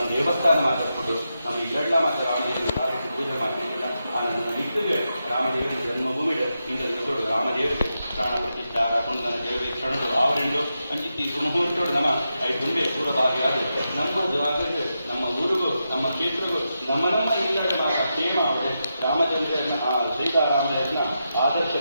ದೇವಸ್ಥಾನ ಮಾತಾಡ್ಕೊಂಡು ನಮ್ಮ ಇವೆಲ್ಲ ಮಾತ್ರ ರಾಮದೇವರ ಕಾರ್ಯಕ್ಕೆ ಪೂಜೆ ಮಾಡ್ತಿದ್ದಿಲ್ಲ ಆ ನನ್ನ ನಿಟ್ಟಿಗೆ ರಾಮದೇವರ ಜನ್ಮಭೂಮಿಗೆ ಈಗ ತಿಳ್ಕೊಳ್ಳು ರಾಮದೇವರಿಗೆ ಪ್ರಾಣ ಪ್ರತಿಷ್ಠಾರ ಪುಂಡನ ದೇವರಿಗೆ ಕ್ಷಣದು ಆವರೆಂಡು ಅಂಚಿತ್ತಿ ಸುಮುಹೂರ್ತೋಡು ನಮ್ಮ ಐದುಂಬೆ ಪೂರ್ವಭಾಗಿಯಾದ ನಮ್ಮದು ಆಗದೆ ನಮ್ಮ ಊರಿಗೂ ನಮ್ಮ ಕ್ಷೇತ್ರಗೂ ನಮ್ಮ ಇಲ್ಲದ ಕ್ಷೇಮ ಅವರೇ ರಾಮಚಂದ್ರನ ಆ ಸೀತಾರಾಮನ ಆದರ್ಶ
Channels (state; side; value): inverted; both; correlation -0.87